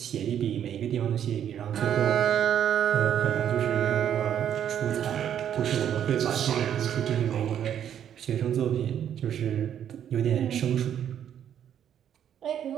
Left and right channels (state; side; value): quieter; left; 9.6 dB